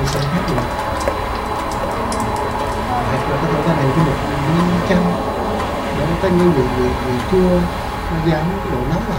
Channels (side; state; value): both; identical; correlation 1.00